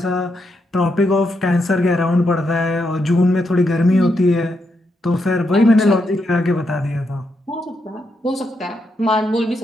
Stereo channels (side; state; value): both; normal; correlation 0.81